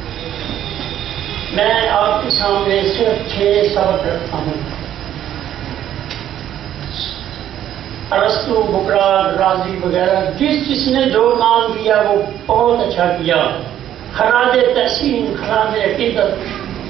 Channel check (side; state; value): left; quieter; 11.2 dB